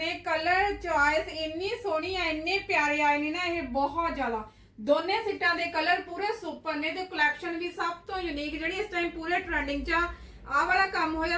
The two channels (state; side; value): identical; both; correlation 1.00